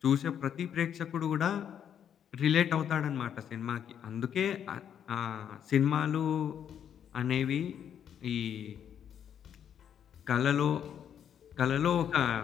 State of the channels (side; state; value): right; quieter; 8.9 dB